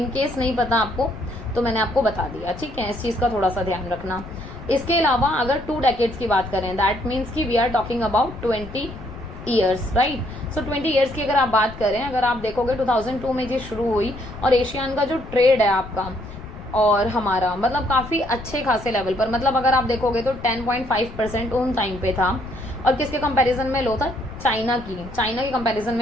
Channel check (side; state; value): left; noise; rumble, 14 dB below the sound